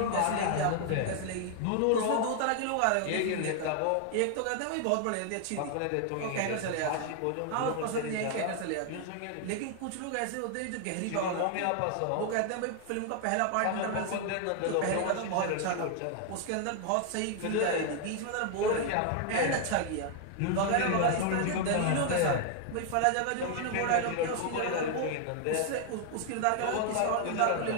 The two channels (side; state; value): both; different; correlation 0.00